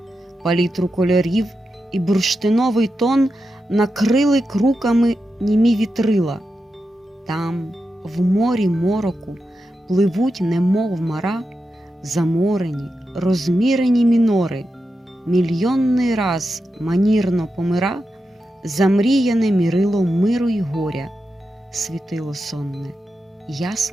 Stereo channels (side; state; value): both; normal; correlation 0.89